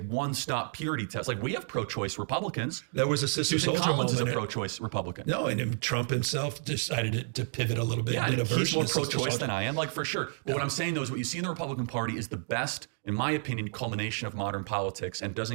purity test. Like, we have pro-choice Republicans. There was a Sister Susan Soldier Collins moment. is a pro-choice Republican. No, and Trump himself decided to pivot a little bit. Yeah, did a he's more version of pro-choice than I am, like, for sure. But what I'm saying, though, is what you see in the Republican Party is the best, in my opinion, culmination of modern politics, and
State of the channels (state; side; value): silent; left; digital silence